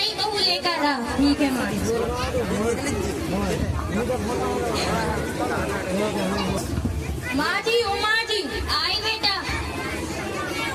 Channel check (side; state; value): both; identical; correlation 1.00